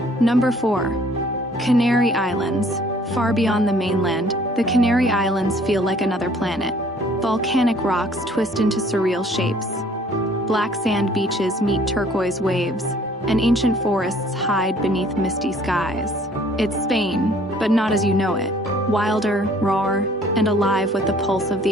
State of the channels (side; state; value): both; normal; correlation 0.57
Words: Number 4, Canary Islands. Far beyond the mainland, the Canary Islands feel like another planet. Volcanic rocks twist into surreal shapes. Black sand beaches meet turquoise waves, and ancient forests hide beneath misty skies. It's Spain, but not as you know it. Wilder, raw, and alive with the pulse of